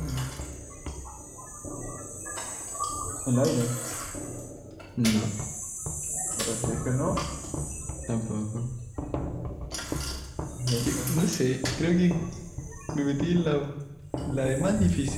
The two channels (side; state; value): both; identical; correlation 1.00